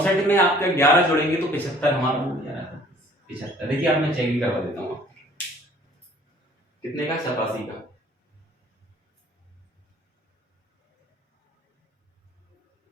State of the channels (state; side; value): normal; both; correlation 0.54